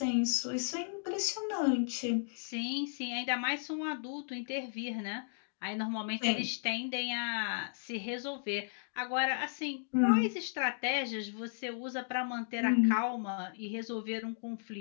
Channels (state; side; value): silent; right; digital silence